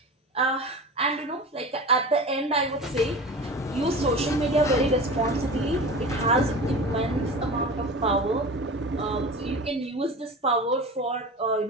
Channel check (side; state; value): both; normal; correlation 0.33